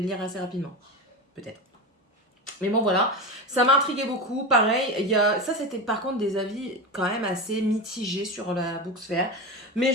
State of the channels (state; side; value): normal; both; correlation 0.22